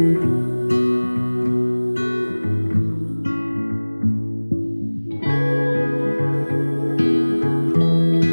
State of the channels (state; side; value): inverted; both; correlation -1.00